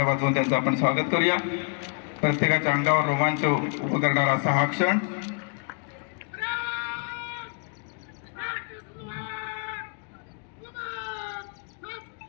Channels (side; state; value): right; quieter; 39.5 dB